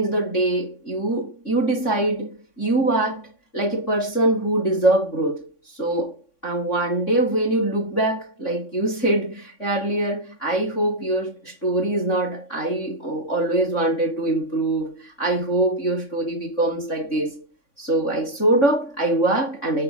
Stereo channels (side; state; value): right; late; 3.6 ms